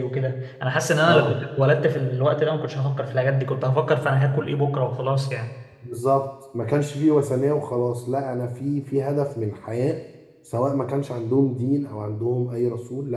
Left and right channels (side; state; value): both; identical; correlation 1.00